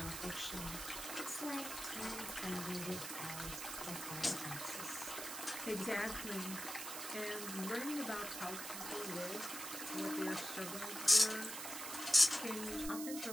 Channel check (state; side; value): noise; right; hiss, 6 dB below the sound